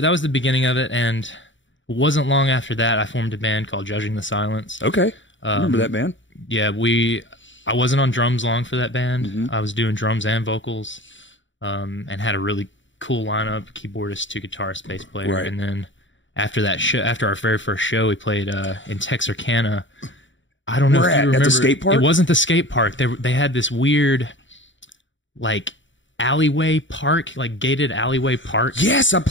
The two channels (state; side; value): late; right; 0.55 ms